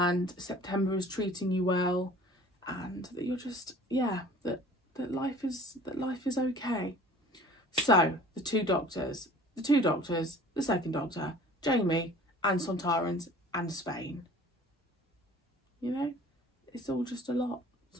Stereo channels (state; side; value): normal; both; correlation 0.47